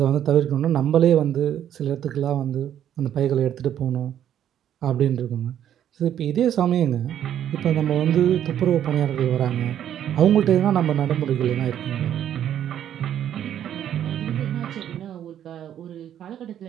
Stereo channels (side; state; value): left; quieter; 10.4 dB